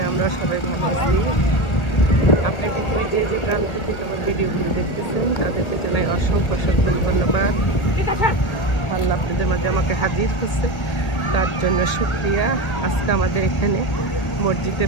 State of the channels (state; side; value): late; right; 1.8 ms